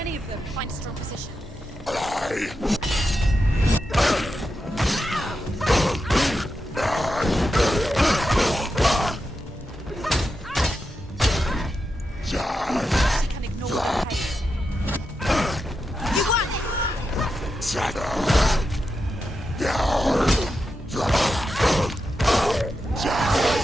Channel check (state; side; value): normal; both; correlation 0.88